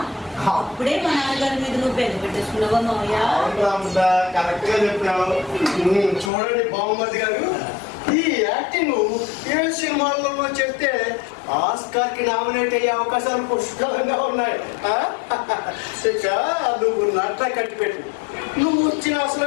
అప్పుడే మా నాన్నగారి మీద నువ్వు పెద్ద పెట్టేసుకున్నావా మావయ్య? రామృత, కరెక్ట్ గా చెప్పినావు. చూడండి బాబుమతి గారు, ఈ యాక్టింగ్ ఏ సినిమాలలో చేస్తే ఆస్కార్ కి నామినేట్ అయ్యే అవకాశాలు పుష్కలంగా ఉన్నాయి. ఇక నువ్వు నట్ల కట్టిపెట్టు. నువ్వు వచ్చిన అసలు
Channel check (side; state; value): right; drops out; at 6.3 s